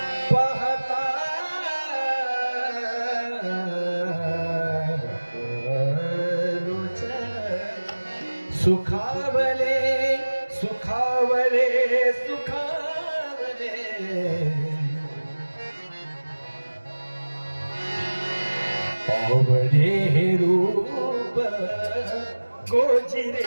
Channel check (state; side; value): inverted; both; correlation -1.00